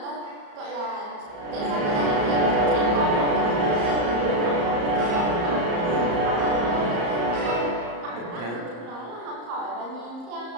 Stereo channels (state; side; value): late; left; 34 ms